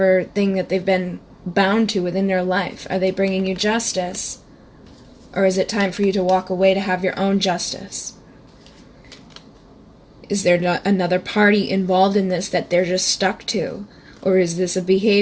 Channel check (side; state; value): both; identical; correlation 1.00